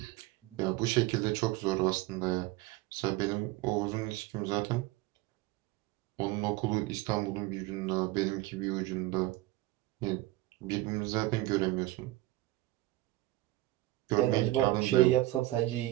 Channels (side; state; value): left; quieter; 17.9 dB